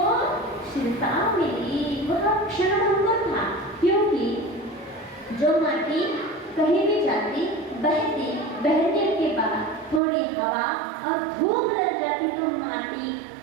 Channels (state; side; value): drops out; left; at 10.0 s